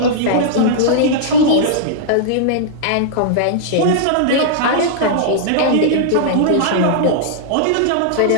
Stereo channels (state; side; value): different; both; correlation -0.02